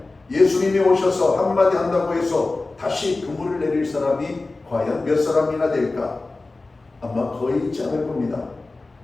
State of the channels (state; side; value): quieter; right; 3.4 dB